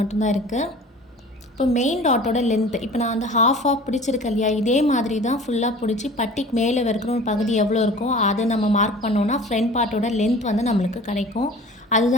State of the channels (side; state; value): both; normal; correlation 0.43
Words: இருக்குது. இப்போ மெயின் டாட்டோட லென்த்து இப்போ நான் வந்து ஹாஃப் பிடிச்சிருக்கேன் இல்லையா, இதே மாதிரி தான் ஃபுல்லாக பிடிச்சி பட்டிக்கு மேலே இருக்கிற ஒரு பகுதி எவ்வளோ இருக்கோ அதை நம்ம மார்க் பண்ணோன்னா ஃப்ரண்ட் பார்ட்டோட லென்த் வந்து நம்மளுக்கு கிடைக்கும்.